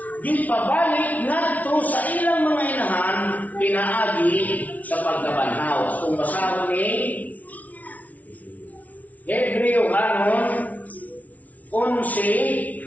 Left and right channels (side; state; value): right; late; 0.072 ms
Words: di pabalik ngadto sa ilang mga inahan pinaagi sa pagkabanhaw. Kung basahon ni Hebreo kanon 11